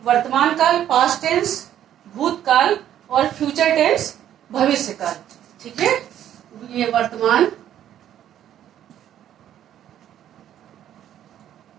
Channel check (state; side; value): quieter; left; 11.0 dB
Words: वर्तमान काल, पास्ट टेंस भूतकाल, और फ्यूचर टेंस भविष्य काल। ठीक है, ये वर्तमान,